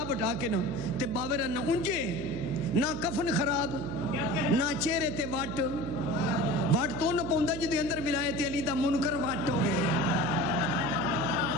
بٹھا کے نا تے باورہ نہ انجے نہ کفن خراب نہ چہرے تے واٹ تو نہ پوندا جی دے اندر ولایت علی دا منکر واٹ ہو گئے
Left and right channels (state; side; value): noise; right; hum, 7 dB below the sound